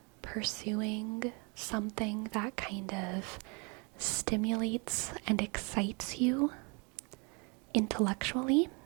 pursuing something that kind of stimulates and excites you intellectually.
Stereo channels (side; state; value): left; quieter; 32.4 dB